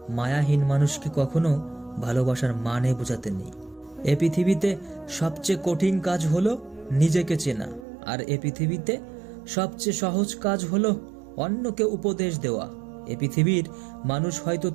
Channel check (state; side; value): drops out; left; at 7.9 s